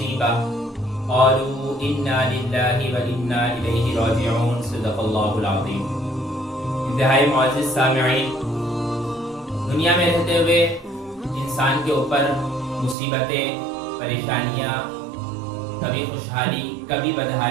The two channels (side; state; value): left; drops out; at 13.0 s